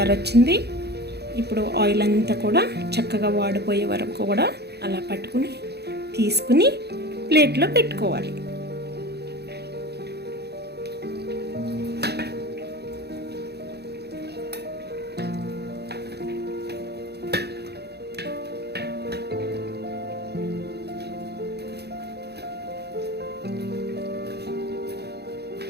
వచ్చింది. ఇప్పుడు ఆయిల్ అంతా కూడా చక్కగా వాడిపోయే వరకు కూడా అలా పట్టుకుని తీసుకుని ప్లేట్లో పెట్టుకోవాలి.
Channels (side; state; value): left; late; 0.48 ms